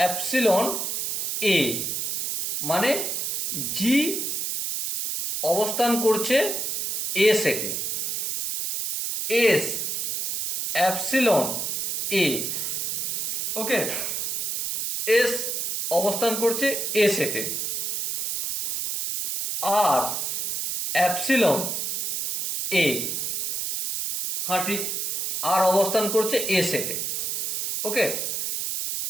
এ, মানে জি অবস্থান করছে এ সেটে। এস অ্যাপসিলন এ, ওকে, এস অবস্থান করছে এ সেটে। আর অ্যাপসিলন এ, হ্যাঁ ঠিক, আর অবস্থান করছে এ সেটে। ওকে,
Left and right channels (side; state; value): right; noise; hiss, 1 dB below the sound